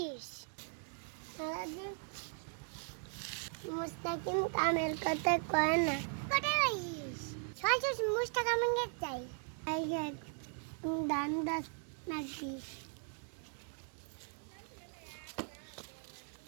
মুস্তাকিম কামের কথা কয় না কোথায় যাইস সহজ মুস্তাকিম কে চাই আই গেট দান দাস নাকি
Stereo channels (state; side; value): silent; left; 52 dB below the other